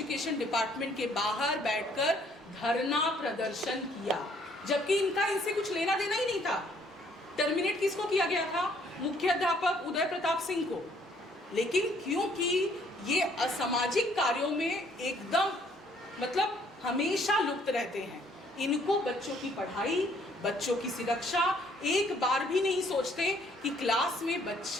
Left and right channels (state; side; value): normal; both; correlation 0.64